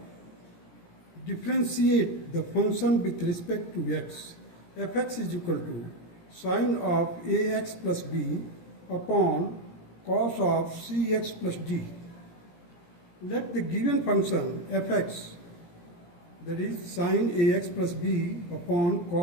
Differentiate the function with respect to x. Fx is equal to sine of ax plus b upon cos of cx plus d. Let the given function fx, that is sine ax plus b upon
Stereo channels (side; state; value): right; late; 17 ms